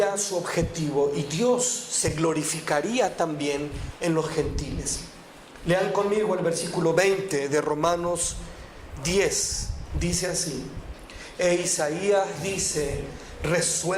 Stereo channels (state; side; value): identical; both; correlation 1.00